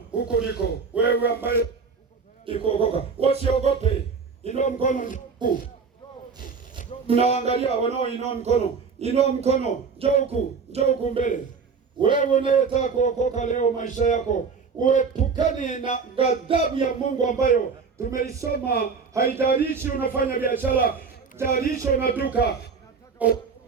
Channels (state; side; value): quieter; left; 5.4 dB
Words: huko uliko wewe ambaye ikuokoka. Usiogope. Inua mkono huku. Mnaangalia wanaoinua mkono. Inua mkono. Njoo huku mbele. Wewe unayetaka kuokoka leo maisha yako, uepukane na ghadhabu ya Mungu ambayo tumeisoma. Haijalishi unafanya biashara, haijalishi una duka,